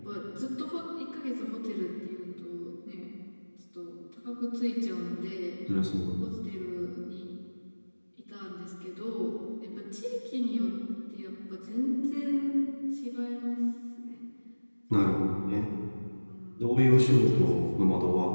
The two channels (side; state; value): both; inverted; correlation -1.00